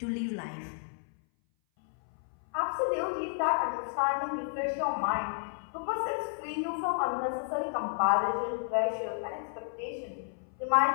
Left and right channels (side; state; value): right; silent; 57 dB below the other